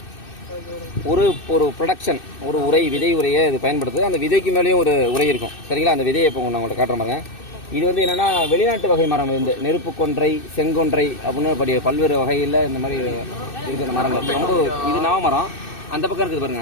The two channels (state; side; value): late; right; 2.6 ms